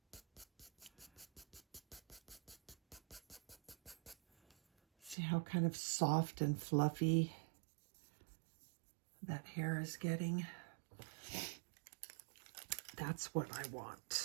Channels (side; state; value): left; drops out; at 5.2 s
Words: See how kind of soft and fluffy that hair is getting? That's what I